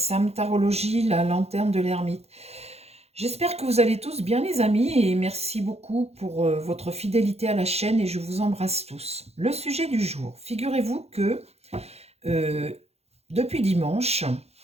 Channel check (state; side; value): late; left; 0.30 ms